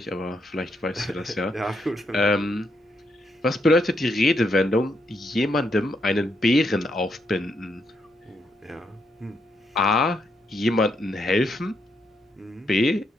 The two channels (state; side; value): normal; both; correlation 0.78